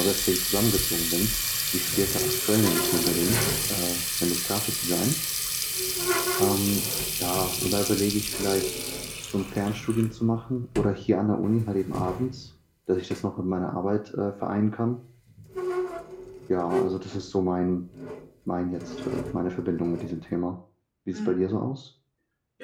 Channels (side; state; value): both; identical; correlation 1.00